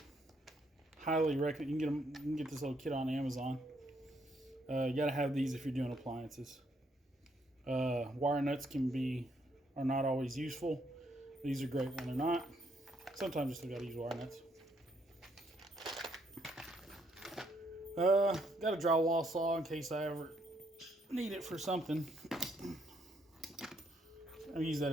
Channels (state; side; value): normal; both; correlation 0.72